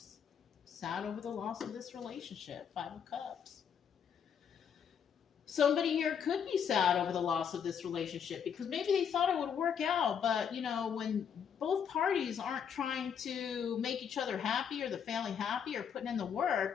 Sad over the loss of this relationship. Five of Cups. Somebody here could be sad over the loss of this relationship because maybe they thought it would work out, but, when both parties aren't trying to make each other happy or the family happy or putting in the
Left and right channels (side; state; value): right; quieter; 7.6 dB